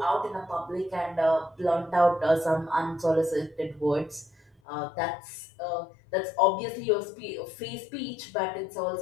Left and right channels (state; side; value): drops out; right; at 4.5 s